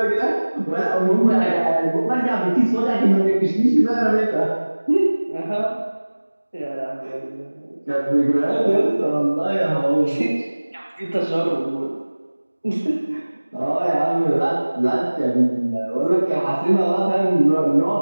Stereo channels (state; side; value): inverted; both; correlation -1.00